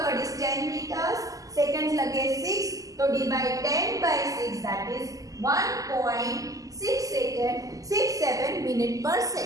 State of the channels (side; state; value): left; late; 0.17 ms